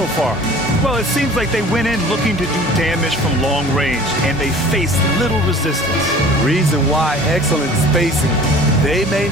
far? Well, it seems like they went in looking to do damage from long range, and they faced little resistance. Reason why: excellent spacing. They may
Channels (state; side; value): normal; both; correlation 0.46